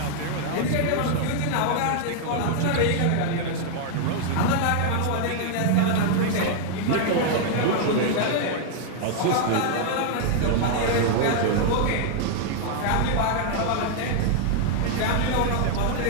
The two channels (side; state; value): both; different; correlation 0.00